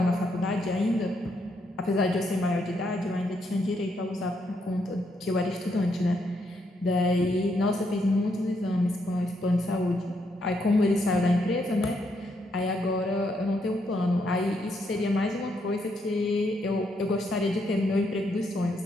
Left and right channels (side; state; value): both; normal; correlation 0.77